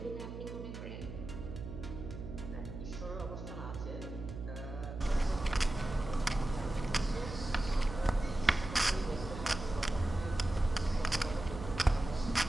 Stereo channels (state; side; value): noise; right; hum, 9 dB below the sound